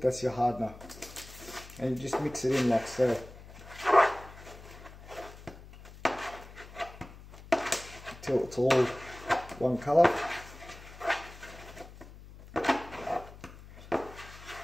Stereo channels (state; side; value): noise; left; hum, 18 dB below the sound